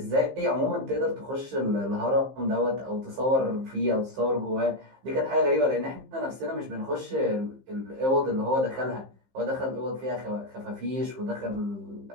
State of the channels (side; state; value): left; late; 15 ms